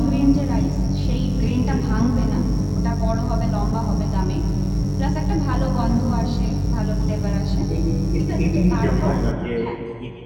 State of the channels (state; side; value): identical; both; correlation 1.00